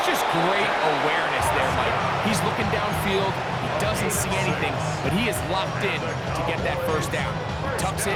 just great awareness there, Mike. He's looking downfield. He doesn't see anything, but he is locked in to get that 1st down. He tucks it,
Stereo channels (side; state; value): both; identical; correlation 1.00